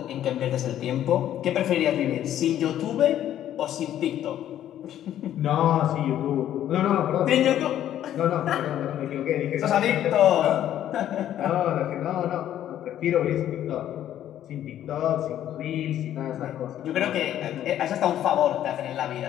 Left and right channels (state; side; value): quieter; right; 11.5 dB